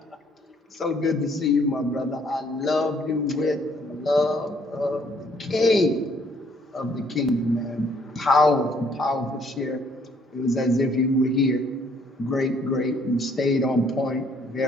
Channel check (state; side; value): normal; both; correlation 0.64